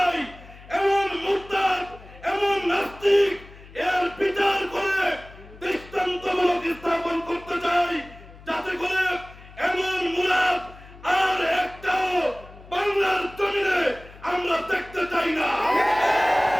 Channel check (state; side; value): noise; left; hum, 20 dB below the sound